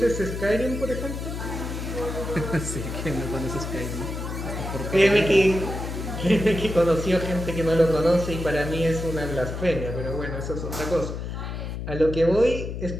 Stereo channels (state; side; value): noise; left; hum, 6 dB below the sound